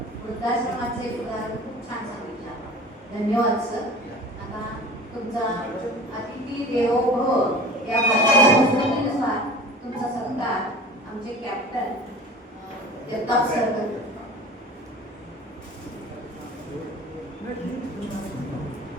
वृद्धाश्रमाचे उदाहरण खूप छान सांगितलं. धन्यवाद सर. आता तुमचा अतिथी देवो भव या संस्कृतीनुसार तुमचा सत्कार आमचे कॅप्टन जगताप सर करतात.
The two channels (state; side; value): normal; both; correlation 0.40